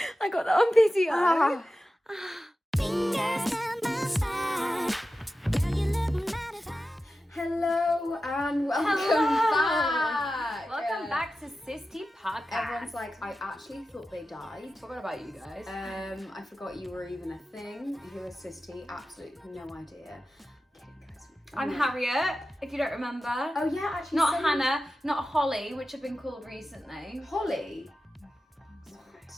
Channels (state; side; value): normal; both; correlation 0.93